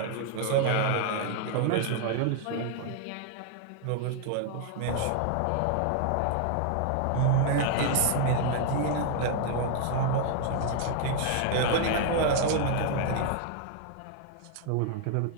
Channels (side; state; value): both; different; correlation 0.00